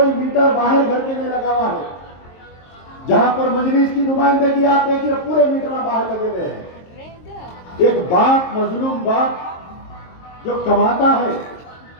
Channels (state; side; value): late; right; 23 ms